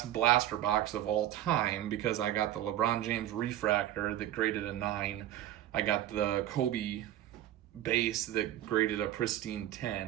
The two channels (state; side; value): quieter; left; 12.7 dB